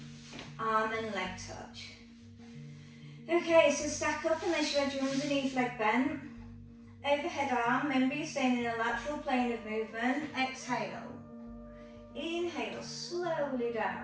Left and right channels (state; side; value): identical; both; correlation 1.00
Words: arm and leg touch. Okay, so stack up unless you had your underneath leg bent. Overhead arm, remember you're staying in a lateral plane of movement. Exhale. Inhale, slowly